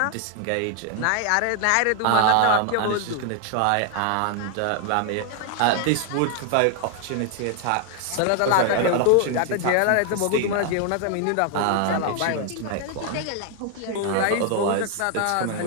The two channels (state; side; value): different; both; correlation 0.00